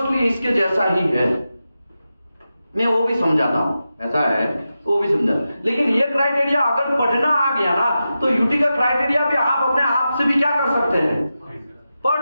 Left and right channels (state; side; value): inverted; both; correlation -0.91